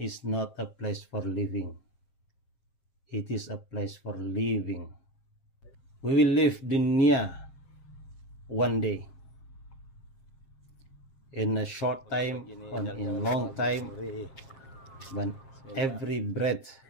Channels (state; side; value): late; right; 7.5 ms